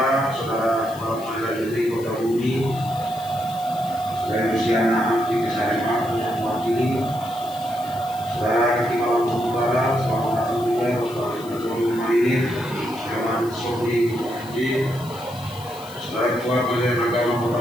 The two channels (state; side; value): noise; left; hiss, 19 dB below the sound